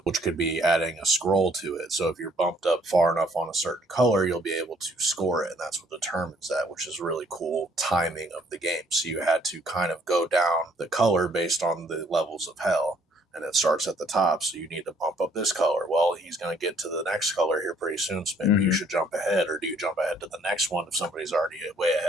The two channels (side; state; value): both; normal; correlation 0.63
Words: which could be adding a scroll to it. So if you're bumped up far enough on a certain color, you'll be able to score it, and that's what determines that, which is really cool timing of the game. So you had to kind of go down the color based on the levels of hell. And it starts at the top, so you need to bump up this color. Well, he's going to get to the next color here pretty soon, so maybe you should jump ahead, or do you jump ahead to the next one if somebody's already way